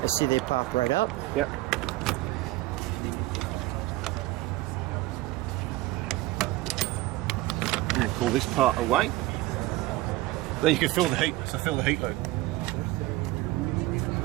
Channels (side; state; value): left; quieter; 18.2 dB